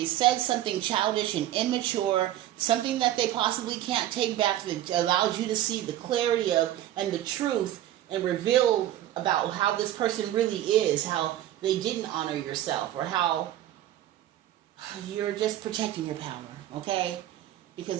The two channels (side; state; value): left; quieter; 13.0 dB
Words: said something childish and immature, something that they possibly can't take back that allows you to see the clarity of and the truth and reveal about how this person really is, how they didn't honor yourself, or how you're just protecting your power, okay?